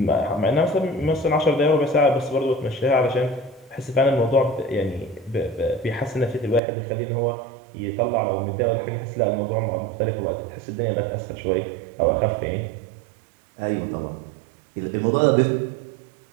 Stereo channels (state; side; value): drops out; left; at 6.6 s